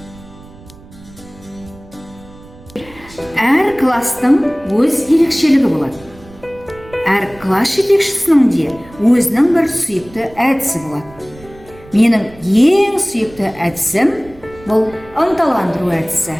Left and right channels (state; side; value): noise; right; rumble, 22 dB below the sound